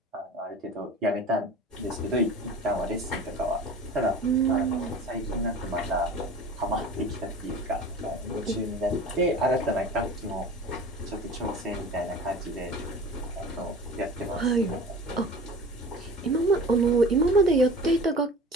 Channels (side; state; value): both; normal; correlation 0.38